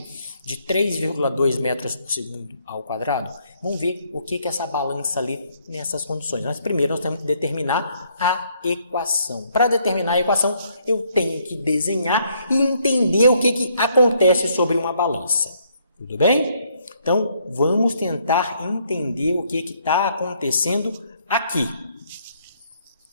de 3,2 metros por segundo ao quadrado? Vamos ver o que essa balança lê nessas condições. Mas primeiro nós temos que determinar a equação. Para determinar a equação, eu tenho que desenhar e entender o que acontece sobre uma balança. Tudo bem? Então, vamos tentar entender o que está acontecendo aqui.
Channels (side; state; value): both; inverted; correlation -0.69